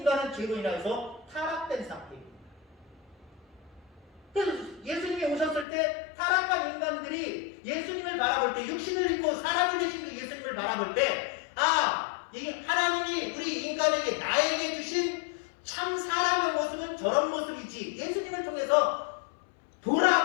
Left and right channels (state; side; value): drops out; right; at 5.7 s